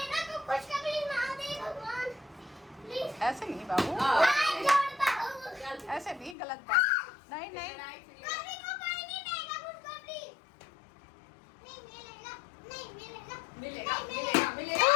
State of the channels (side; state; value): right; drops out; at 6.4 s